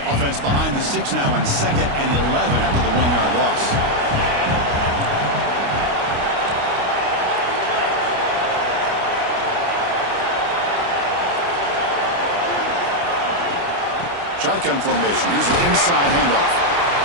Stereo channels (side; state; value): left; late; 29 ms